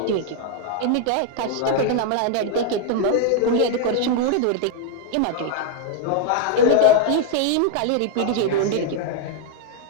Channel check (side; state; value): both; different; correlation 0.00